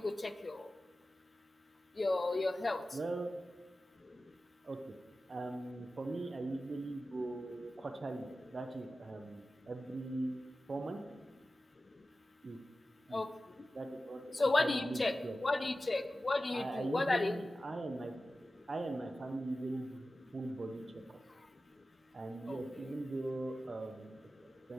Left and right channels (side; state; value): both; normal; correlation 0.94